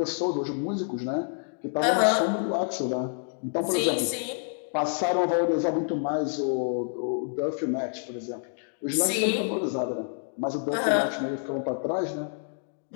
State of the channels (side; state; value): right; silent; 59 dB below the other